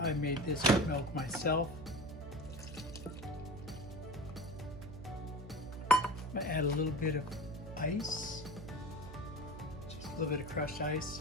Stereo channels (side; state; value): right; noise; hum, 12 dB below the sound